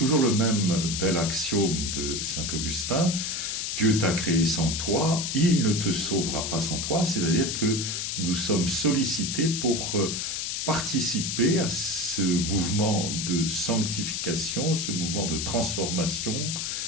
le même bel axiome de saint Augustin. Dieu t'a créé sans toi, il ne te sauvera pas sans toi, c'est-à-dire que nous sommes sollicités pour participer à ce mouvement de sanctification, ce mouvement de transformation,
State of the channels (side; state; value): left; noise; hiss, 2 dB below the sound